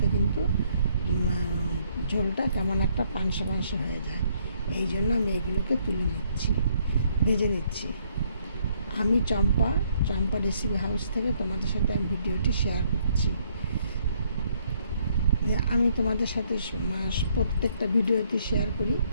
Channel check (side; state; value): both; inverted; correlation -0.68